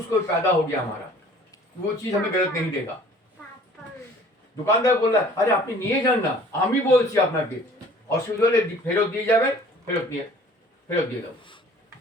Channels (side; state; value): both; normal; correlation 0.51